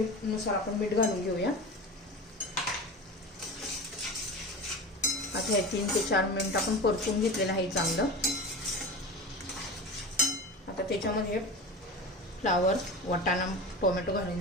आपण मीठ घालून घेऊया. आता हे 3 ते 4 मिनिट आपण परतून घेतलेलं आहे चांगलं. आता त्याच्यामध्ये फ्लावर, वाटाणा, टोमॅटो घालून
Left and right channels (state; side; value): normal; both; correlation 0.29